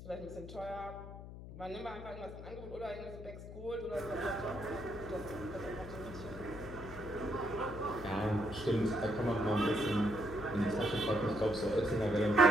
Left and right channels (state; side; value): noise; left; hum, 12 dB below the sound